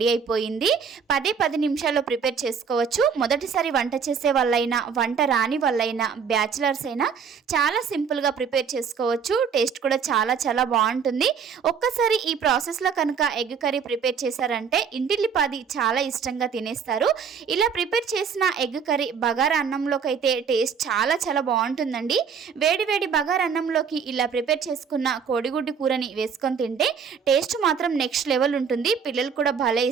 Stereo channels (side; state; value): left; quieter; 6.5 dB